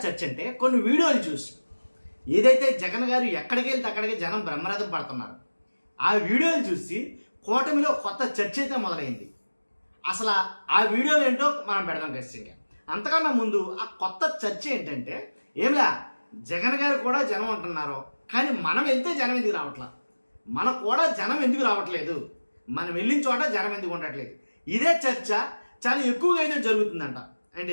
చర్చ అంటే కొన్ని వీడియోలు చూసి ఏదైతే జగన్ గారు ఎక్కడికి వెళ్తే అక్కడికి జనం బ్రహ్మరథం పడుతున్నారు. ఆ వీడియోలు చూసి కూటమిలో కొత్త చర్చ అయితే మొదలైంది. అసలు ఆ వీడియోలు ఏంటో మనం పెడదాం ఖచ్చితంగా. అంతకన్నా ముందు ఆ కొత్త చర్చ ఏంటంటే ఏమిలా జగన్ గారు కూడా జనం అంటున్నారు, కానీ మనం వెళ్తే జనం ఎందుకు రావట్లా, మనకు కూడా జనం ఎందుకు రావట్లేదు, మనం వెళ్ళిన చోట జనం ఎందుకు ఉండట్లేదు. ఇదే చర్చ చాలా ఎక్కువగా అయితే జరుగుతుందంట. అంటే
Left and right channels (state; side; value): inverted; both; correlation -1.00